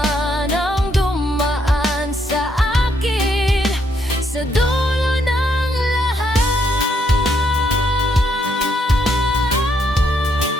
ang dumaan sa akin, sa dulo ng lahat,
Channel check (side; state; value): both; normal; correlation 0.74